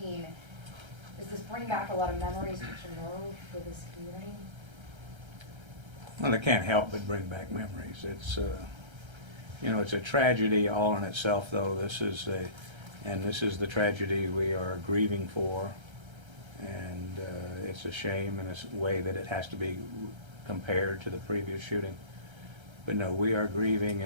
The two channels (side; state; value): left; late; 1.3 ms